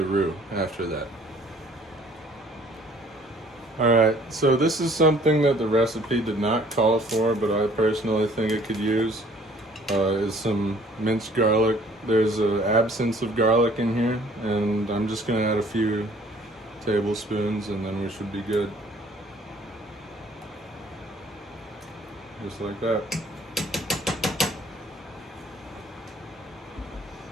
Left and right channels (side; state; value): both; normal; correlation 0.56